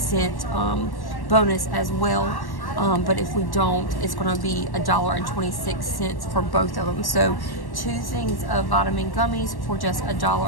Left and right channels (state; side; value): late; right; 1.1 ms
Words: bonus as well. But if we don't, it's going to be $1.26 for both of them. So 2 things of vitamin gummies for just